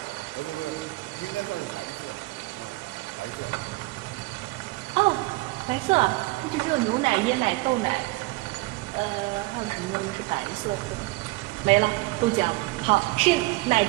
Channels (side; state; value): left; quieter; 22.3 dB